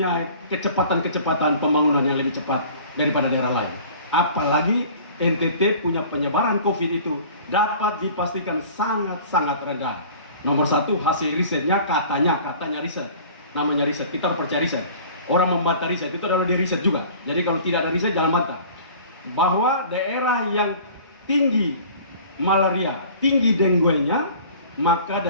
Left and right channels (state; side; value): inverted; both; correlation -0.46